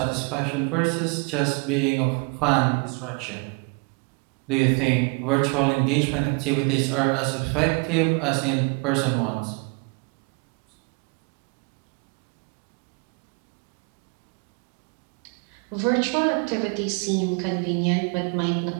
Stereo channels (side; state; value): left; quieter; 30.9 dB